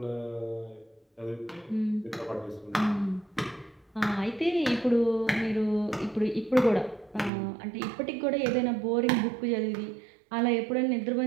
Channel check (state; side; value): drops out; left; at 7.3 s